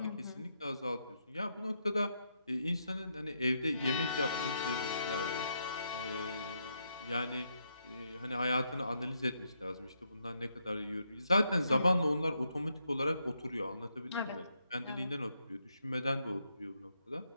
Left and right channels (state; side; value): inverted; both; correlation -0.79